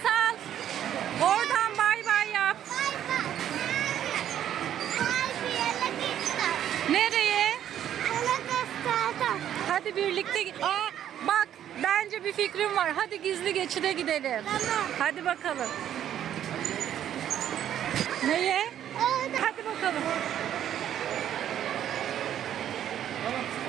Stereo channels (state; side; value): quieter; left; 10.6 dB